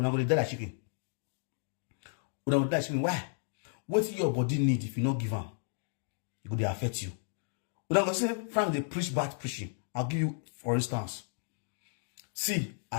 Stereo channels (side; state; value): right; silent; digital silence